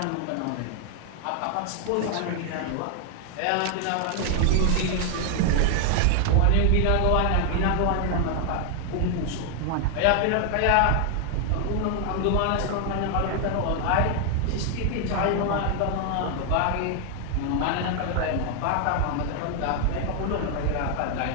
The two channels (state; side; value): different; both; correlation 0.00